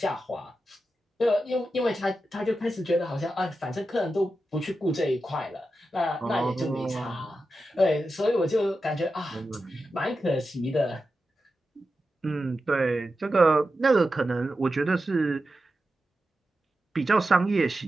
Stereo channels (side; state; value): both; normal; correlation 0.91